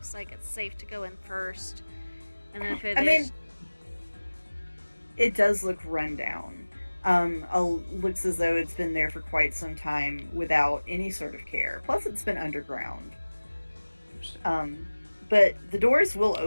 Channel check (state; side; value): inverted; both; correlation -1.00